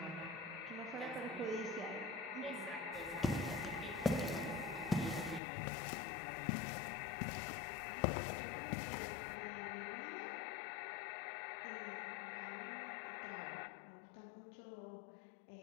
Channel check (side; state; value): right; drops out; at 5.4 s